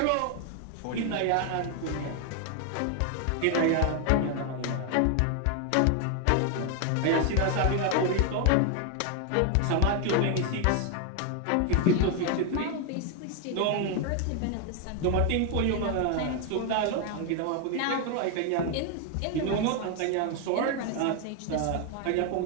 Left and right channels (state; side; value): different; both; correlation 0.01